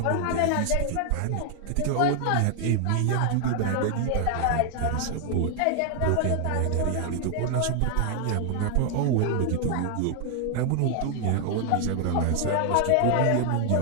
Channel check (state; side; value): different; both; correlation 0.00